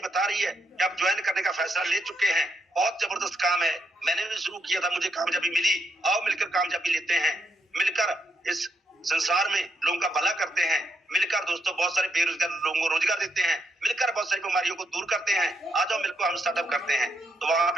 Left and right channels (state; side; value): normal; both; correlation 0.79